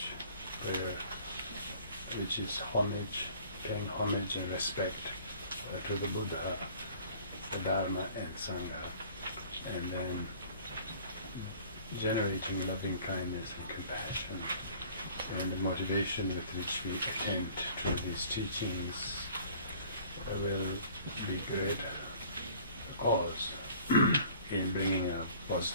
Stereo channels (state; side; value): inverted; both; correlation -0.52